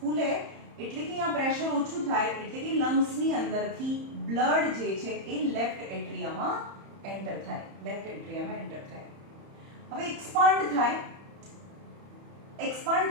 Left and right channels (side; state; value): left; late; 31 ms